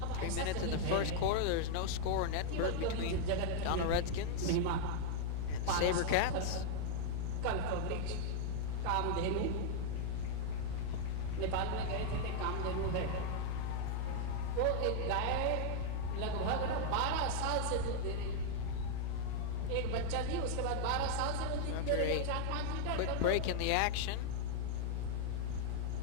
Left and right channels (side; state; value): both; different; correlation 0.00